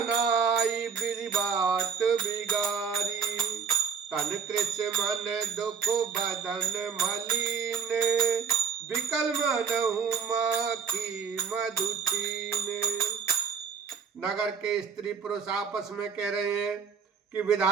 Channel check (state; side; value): quieter; left; 6.3 dB